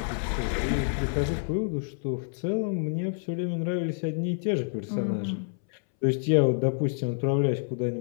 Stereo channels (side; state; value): right; silent; 59 dB below the other